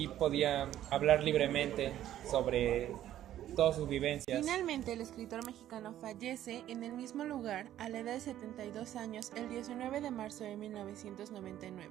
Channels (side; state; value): left; quieter; 12.3 dB